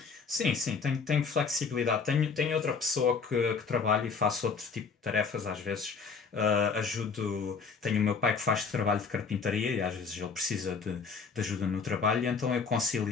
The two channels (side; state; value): right; quieter; 5.3 dB